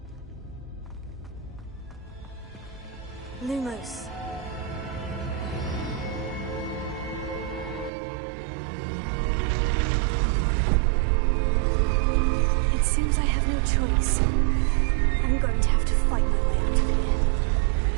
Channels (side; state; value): left; drops out; at 7.9 s